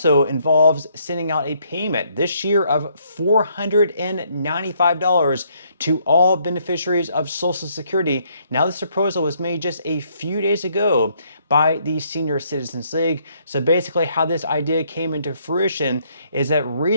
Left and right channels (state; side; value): inverted; both; correlation -0.69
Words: involves sending out a payment this year of $495 to all beneficiaries of Social Security. Now, this proposal was made just a few days ago by the Senior Citizens League. So basically how this idea came into fruition is that